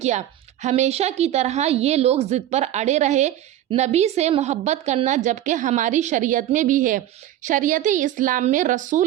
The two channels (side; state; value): left; quieter; 12.5 dB